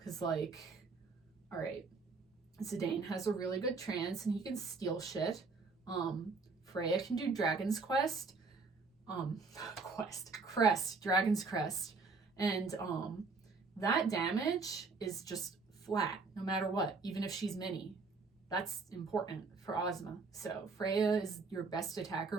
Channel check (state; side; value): quieter; left; 4.3 dB